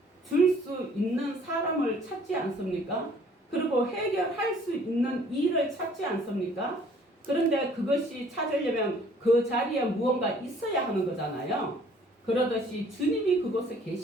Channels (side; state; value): both; normal; correlation 0.57